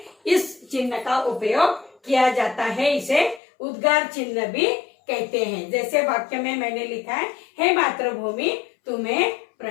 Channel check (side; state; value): right; drops out; at 3.4 s